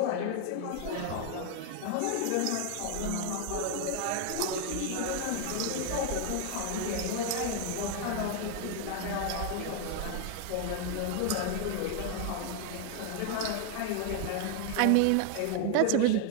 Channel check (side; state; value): both; different; correlation 0.00